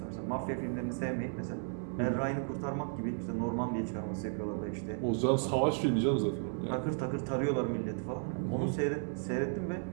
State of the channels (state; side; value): silent; left; 55 dB below the other